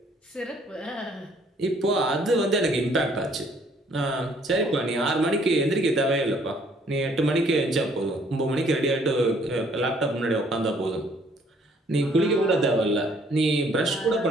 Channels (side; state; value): both; normal; correlation 0.62